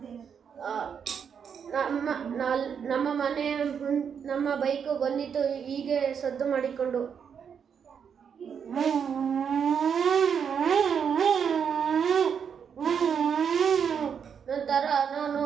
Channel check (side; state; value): left; quieter; 7.2 dB